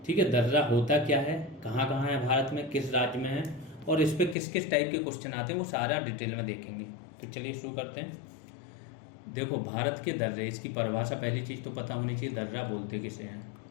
ठीक है, दर्रा होता क्या है, कहाँ कहाँ है भारत में, किस राज्य में है और इस पे किस किस टाइप के क्वेश्चन आते हैं, वो सारा डिटेल में देखेंगे। तो चलिए शुरू करते हैं। देखो, भारत के दर्रे, इसकी परिभाषा पहली चीज़ तो पता होनी चाहिए, दर्रा बोलते किसे हैं।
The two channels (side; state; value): right; drops out; at 4.4 s